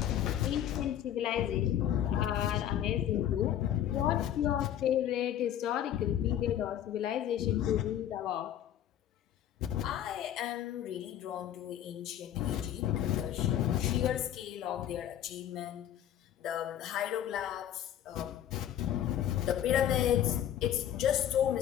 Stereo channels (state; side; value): quieter; right; 10.9 dB